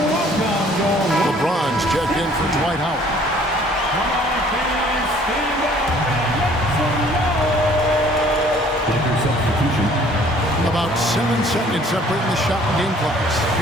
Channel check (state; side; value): normal; both; correlation 0.56